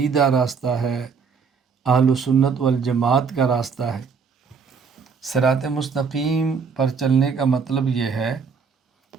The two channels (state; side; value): quieter; left; 5.6 dB